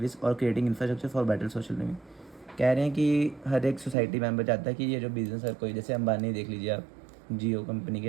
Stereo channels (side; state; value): left; drops out; at 4.0 s